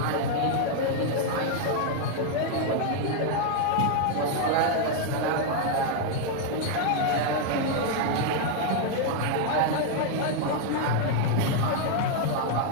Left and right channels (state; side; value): different; both; correlation 0.00